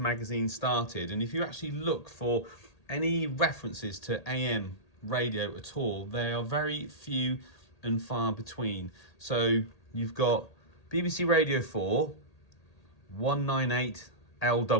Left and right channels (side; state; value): right; late; 1.8 ms